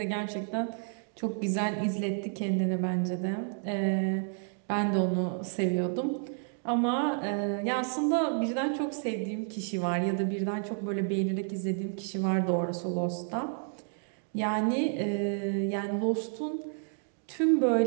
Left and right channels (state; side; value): silent; left; 57 dB below the other